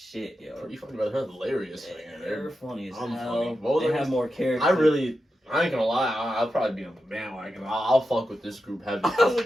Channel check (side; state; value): both; normal; correlation 0.89